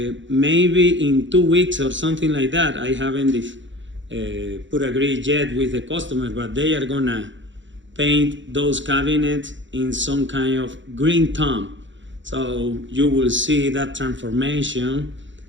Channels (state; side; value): late; left; 0.54 ms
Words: in 2 weeks or something like that. I haven't put agreed yet with the customer, but they are gonna paint those cabinets in some kind of green tone. So you will see that transformation